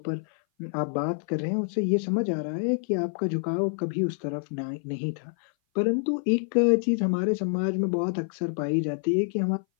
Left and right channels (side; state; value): right; silent; 58 dB below the other